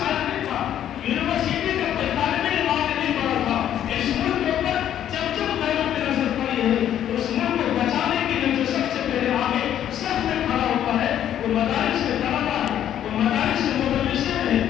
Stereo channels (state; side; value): quieter; right; 10.7 dB